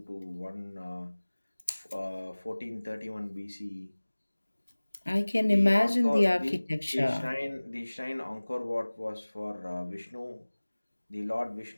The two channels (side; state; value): both; inverted; correlation -1.00